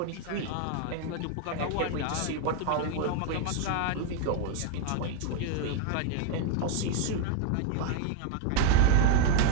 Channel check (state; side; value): different; both; correlation 0.01